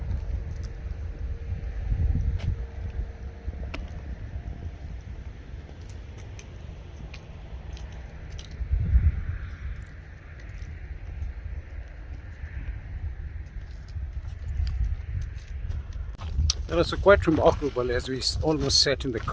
It was quite remarkable. As we almost sat in the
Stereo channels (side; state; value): both; identical; correlation 1.00